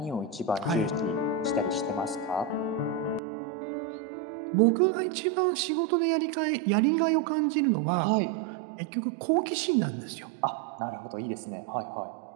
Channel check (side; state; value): left; drops out; at 3.2 s